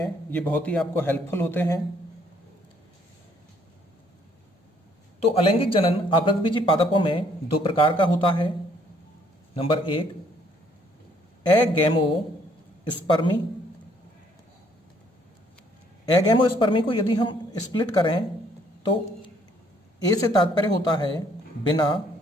ये बहुत ही आपको हेल्पफुल होते हैं। तो अलैंगिक जनन आवृतबीजी पादपों में दो प्रकार का होता है। Number 1 agamospermy. एगैमोस्पर्मी को यदि हम स्प्लिट करें तो ए से तात्पर्य होता है बिना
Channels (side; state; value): both; normal; correlation 0.65